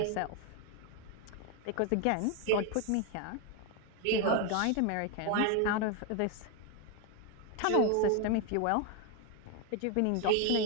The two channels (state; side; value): different; both; correlation 0.01